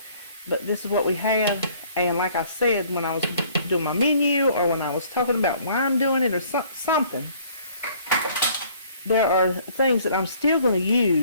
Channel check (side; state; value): both; inverted; correlation -0.57